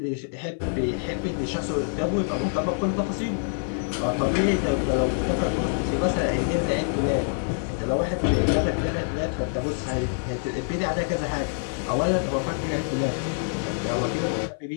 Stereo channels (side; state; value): right; silent; 57 dB below the other